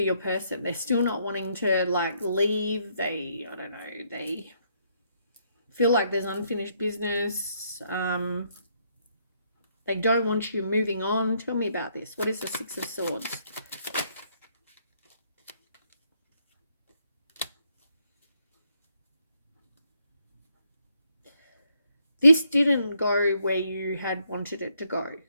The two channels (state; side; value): inverted; both; correlation -0.73